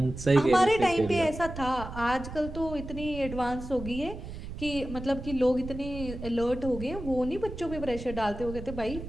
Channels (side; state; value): right; noise; rumble, 10 dB below the sound